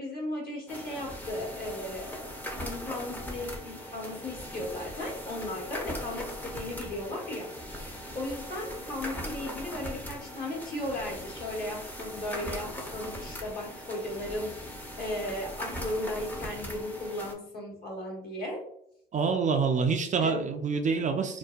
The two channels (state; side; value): normal; both; correlation 0.45